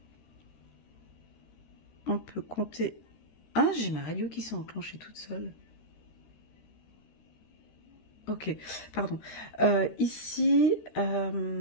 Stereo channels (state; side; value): late; right; 13 ms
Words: On peut compter... Ah, j'ai ma radio qui s'est enclenchée toute seule. Ok, pardon. Ici, ah